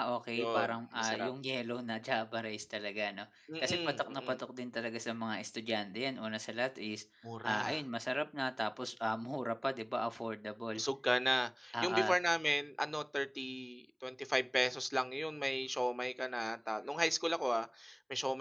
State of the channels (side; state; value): both; identical; correlation 1.00